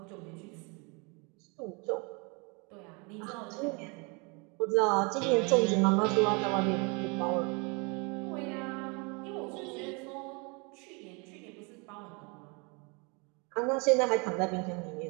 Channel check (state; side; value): quieter; left; 31.1 dB